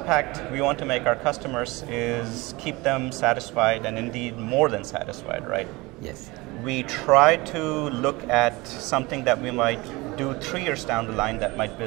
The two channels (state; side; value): quieter; left; 22.9 dB